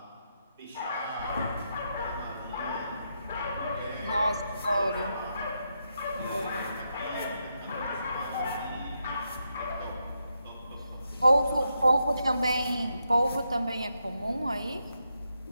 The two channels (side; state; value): both; inverted; correlation -0.83